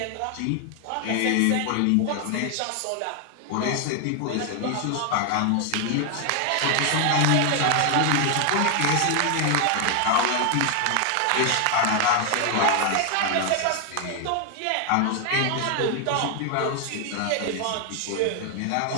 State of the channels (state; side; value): different; both; correlation 0.00